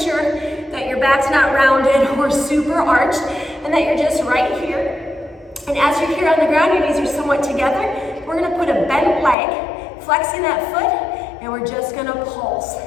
that your back's not rounded or super arched, and that you're just right here. And as you're here on the ground, your knees are somewhat together. We're gonna put a bent leg, flexing that foot, and we're just gonna pulse.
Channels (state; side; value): drops out; right; at 9.3 s